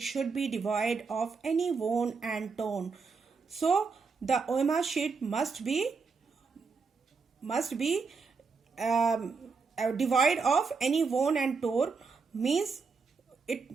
should be devoid of any worn and torn. So the OMR sheet must be devoid of any worn and torn, means it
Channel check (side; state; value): left; quieter; 4.9 dB